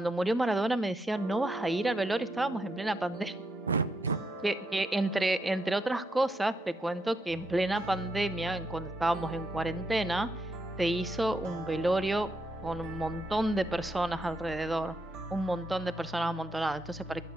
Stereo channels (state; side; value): normal; both; correlation 0.80